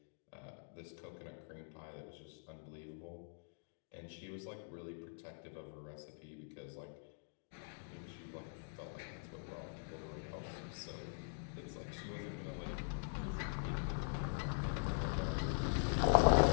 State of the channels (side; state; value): right; silent; digital silence